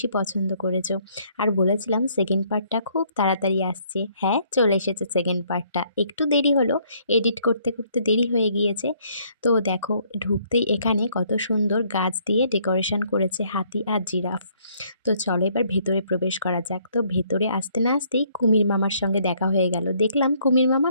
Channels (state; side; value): inverted; both; correlation -0.66